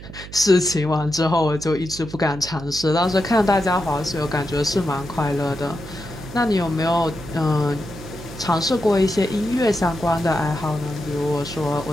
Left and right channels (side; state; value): right; noise; hum, 14 dB below the sound